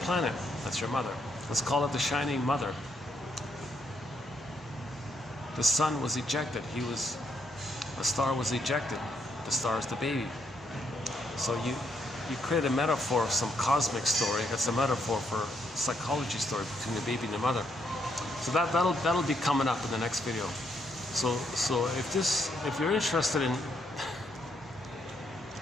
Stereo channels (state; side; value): normal; both; correlation 0.75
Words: That's your mother. Let's call it the shining mother. The sun was ejected. A star was ejected. The star is the baby. So you create a metaphor of some cosmic story. That's a metaphor for a psychology story between the baby and the mother. So that'll be coming up in the next video. So if you're interested in